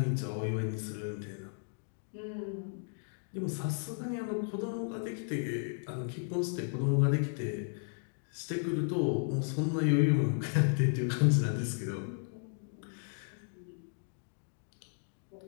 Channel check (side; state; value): right; silent; digital silence